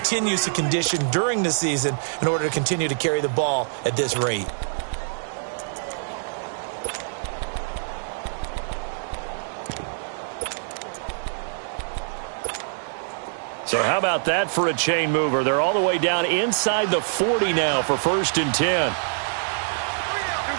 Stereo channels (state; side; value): silent; left; 59 dB below the other